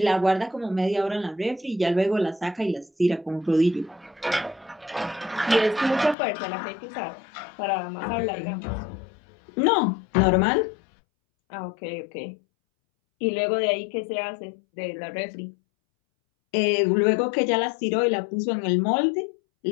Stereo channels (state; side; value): drops out; right; at 6.2 s